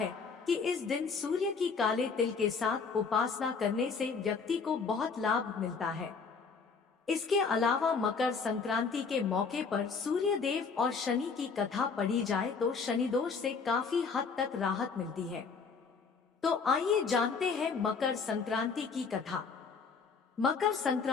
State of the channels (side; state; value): right; quieter; 5.2 dB